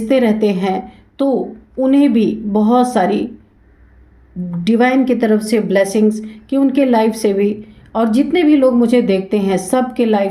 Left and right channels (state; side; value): identical; both; correlation 1.00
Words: रहते हैं, तो उन्हें भी बहुत सारी डिवाइन की तरफ से ब्लेसिंग्स कि उनके लाइफ से भी, और जितने भी लोग मुझे देखते हैं सब के